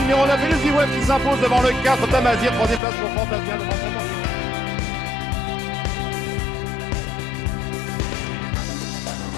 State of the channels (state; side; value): drops out; right; at 2.8 s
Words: 9, Elusive Wave qui s'impose devant le 4, Tamazir, troisième place pour Fantasia devant son bon.